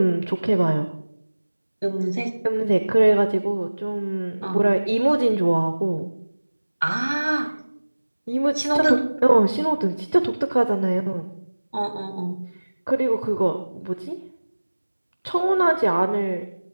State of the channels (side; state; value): both; inverted; correlation -1.00